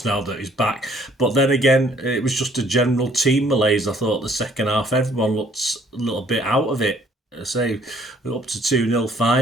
now that he's back. But then again, it was just a general team malaise. I thought the second half, everyone looked a little bit out of it. I say, we're up to 2-0,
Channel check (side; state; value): both; normal; correlation 0.61